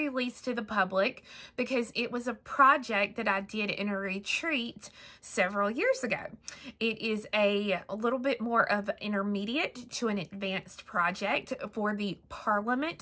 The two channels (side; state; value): both; identical; correlation 1.00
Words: to the public because it was a project that I did in a retreat several years ago. It is a little bit more of an intermediate to an advanced project for the